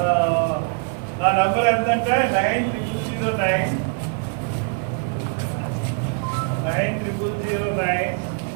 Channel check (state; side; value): quieter; left; 39.6 dB